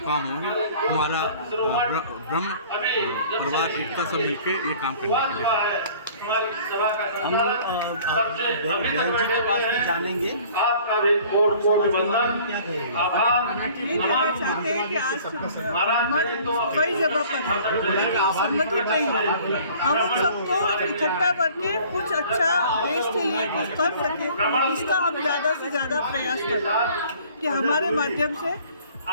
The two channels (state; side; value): inverted; both; correlation -0.51